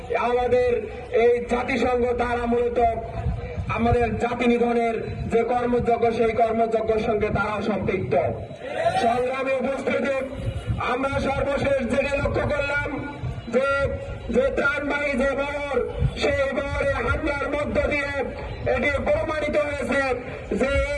আমাদের এই জাতিসংঘ তারা মূলত আমাদের জাতি নিধনের যে কর্মযজ্ঞ সেই কর্মযজ্ঞের সঙ্গে তারা সম্পৃক্ত। সংগ্রামে উপস্থিতি আমরা সর্বশেষ যেটা লক্ষ্য করলাম যে ত্রাণবাহী যে বহর সেই বহরে হামলার মধ্য দিয়ে এটি প্রমাণিত হয়েছে যে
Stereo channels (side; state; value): both; identical; correlation 1.00